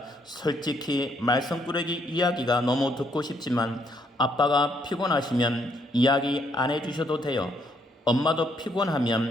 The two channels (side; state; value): both; normal; correlation 0.71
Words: 솔직히 말썽꾸러기 이야기가 너무 듣고 싶지만 아빠가 피곤하시면 이야기 안 해주셔도 돼요. 엄마도